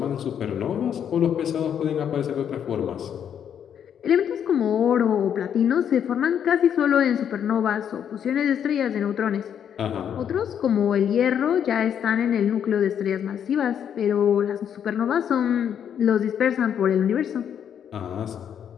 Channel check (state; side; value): quieter; right; 8.7 dB